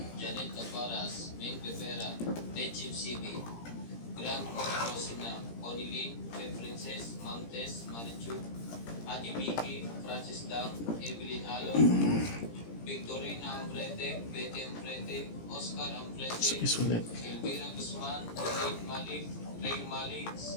Janet Caparas, Ming Rivera, Tejim CB, Grand Rosina, Onilin, Princess, Montes, Marichu, Adi Vicky, Francis Dang, Evelyn Halo, Victorina Ambrete, Betty Ambrete, Oscar Ambrete, Sais ulit. Elvira Guzman, Elaine Malik, Ray Malik,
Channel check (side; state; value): right; late; 17 ms